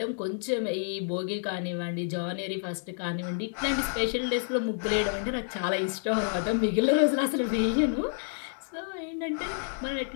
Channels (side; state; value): right; silent; digital silence